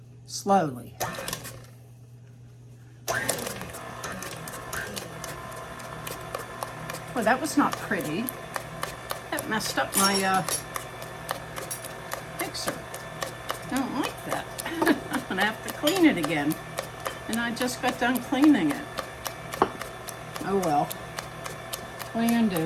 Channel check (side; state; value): both; identical; correlation 1.00